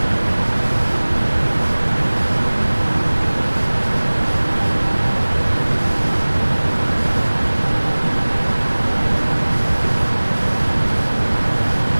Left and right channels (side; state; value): both; inverted; correlation -1.00